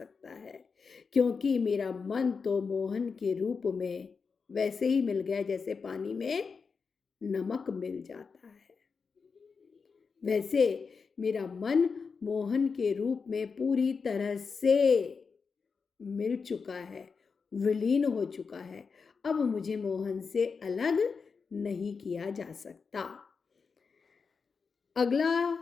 है, क्योंकि मेरा मन तो मोहन के रूप में वैसे ही मिल गया जैसे पानी में नमक मिल जाता है। वैसे मेरा मन मोहन के रूप में पूरी तरह से मिल चुका है, विलीन हो चुका है, अब मुझे मोहन से अलग नहीं किया जा सकता। अगला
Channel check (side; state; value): right; quieter; 5.2 dB